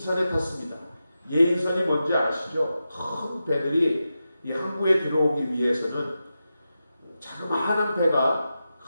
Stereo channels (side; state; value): both; inverted; correlation -0.91